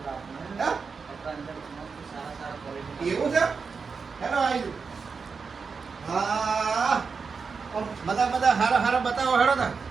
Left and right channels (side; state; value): left; quieter; 5.2 dB